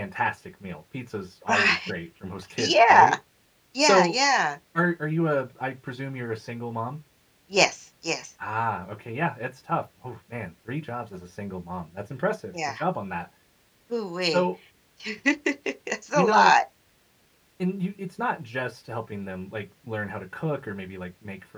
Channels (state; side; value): identical; both; correlation 1.00